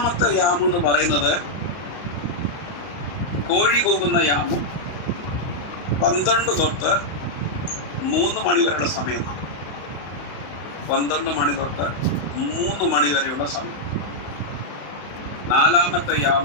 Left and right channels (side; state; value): right; late; 34 ms